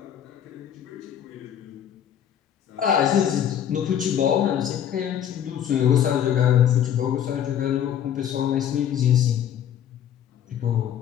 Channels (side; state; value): right; quieter; 9.7 dB